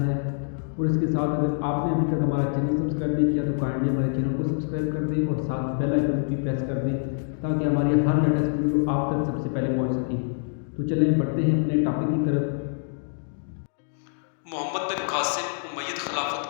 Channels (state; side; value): silent; right; digital silence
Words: ہے، اور اس کے ساتھ اگر آپ نے ابھی تک ہمارا چینل سبسکرائب نہیں کیا تو کائنڈلی ہمارے چینل کو سبسکرائب کر دیں اور ساتھ بیل آئیکن بھی پریس کر دیں تاکہ ہماری ہر لیٹسٹ ویڈیو آپ تک سب سے پہلے پہنچ سکے۔ تو چلیں بڑھتے ہیں اپنے ٹاپک کی طرف۔ محمد بن قاسم امید